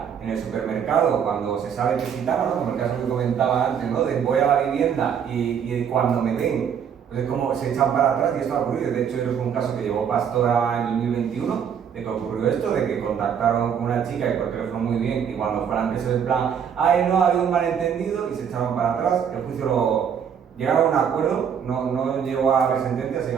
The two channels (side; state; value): left; quieter; 7.8 dB